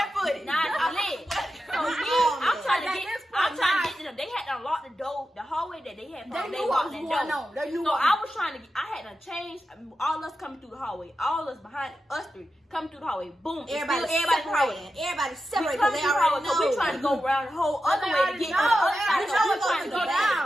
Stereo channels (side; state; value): both; normal; correlation 0.90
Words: Now it's lit. So I'm trying to get to them. They had to unlock the door, the hallway that they had. They knew what was going on. They knew So what I was trying to. I had to change. All us coming through the hallway. All us behind us three coming through the hallway. Boom. Everybody separated. Everybody We separated come because through they the already hallway. know. So we trying to go around the whole other They way to already get know. to the other They side. already So know we it's trying gonna to go go down.